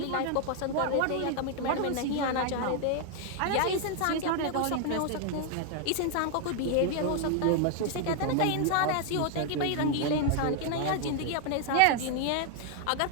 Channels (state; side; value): different; both; correlation 0.00